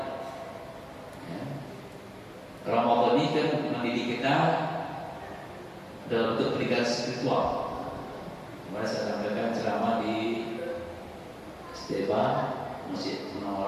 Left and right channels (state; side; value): identical; both; correlation 1.00